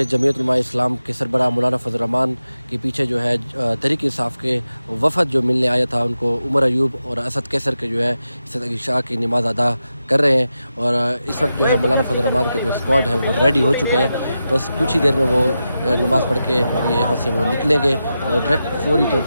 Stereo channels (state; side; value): inverted; both; correlation -0.90